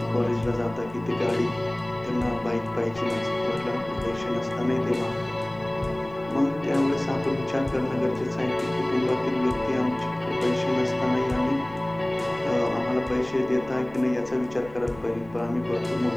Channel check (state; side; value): noise; left; rumble, 20 dB below the sound